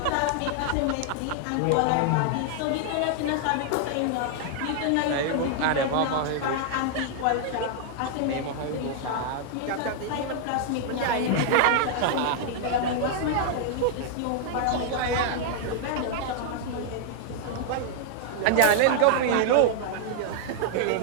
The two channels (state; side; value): different; both; correlation 0.00